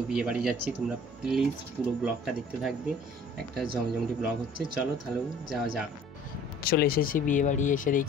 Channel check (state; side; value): normal; both; correlation 0.51